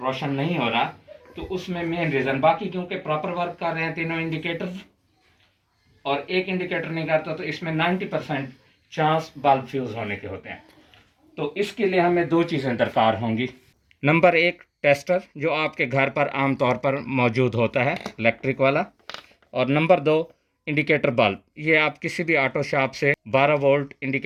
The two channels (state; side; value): identical; both; correlation 1.00